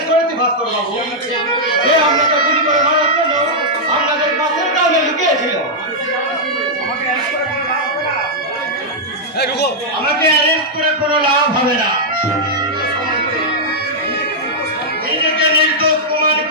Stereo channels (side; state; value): both; normal; correlation -0.06